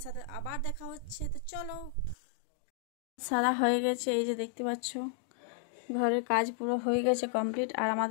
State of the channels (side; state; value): right; drops out; at 2.1 s